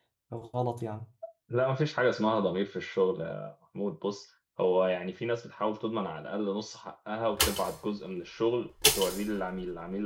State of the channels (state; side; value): identical; both; correlation 1.00